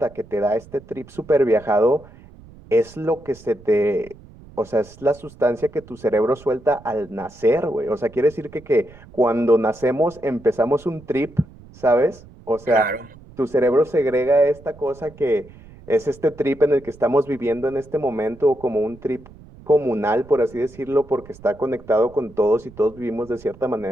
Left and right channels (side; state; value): right; noise; rumble, 21 dB below the sound